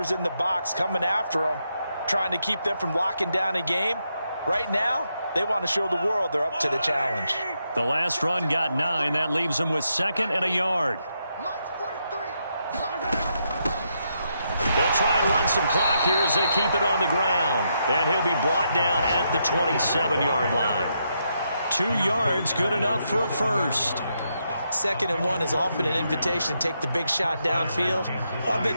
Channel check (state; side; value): inverted; both; correlation -0.80